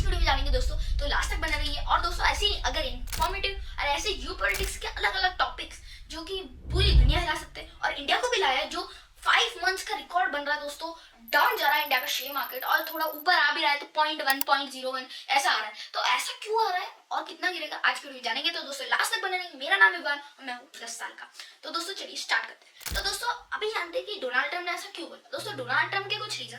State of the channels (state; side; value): identical; both; correlation 1.00